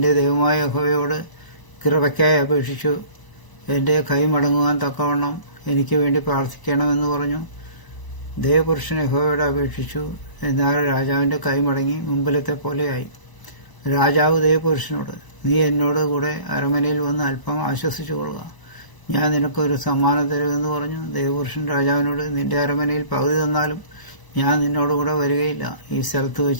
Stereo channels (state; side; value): late; right; 1.0 ms